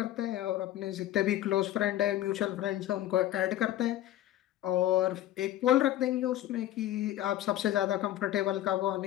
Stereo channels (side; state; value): right; quieter; 13.5 dB